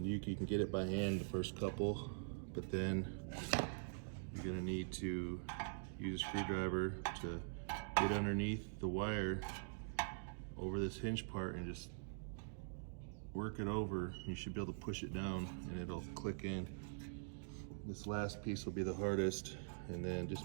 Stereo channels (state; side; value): silent; left; digital silence